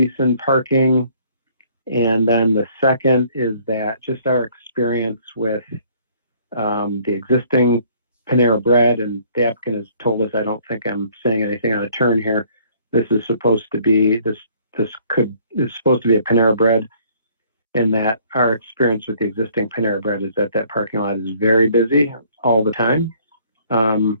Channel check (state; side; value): inverted; both; correlation -0.60